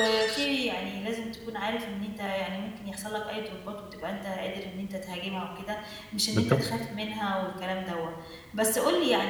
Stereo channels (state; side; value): identical; both; correlation 1.00